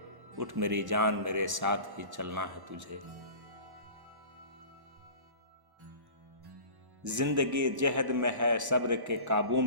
उठ मेरी जान मेरे साथ ही चलना है तुझे। जिंदगी जहद में है सब्र के काबू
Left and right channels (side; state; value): left; late; 1.1 ms